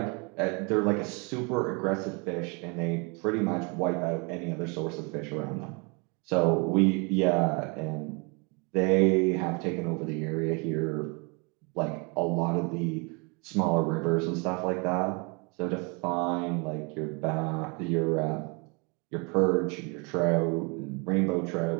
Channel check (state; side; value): quieter; left; 31.8 dB